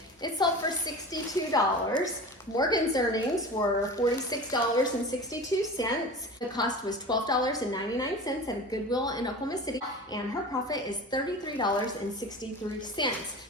It sold for $62. Morgan's earnings were $46.62. The cost was $12.99 at a Goodwill in Oklahoma City, and her profit is $33.63.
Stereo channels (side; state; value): both; normal; correlation 0.34